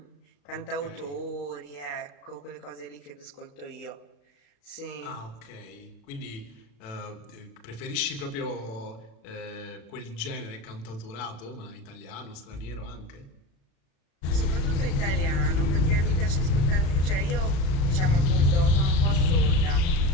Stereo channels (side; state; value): right; late; 36 ms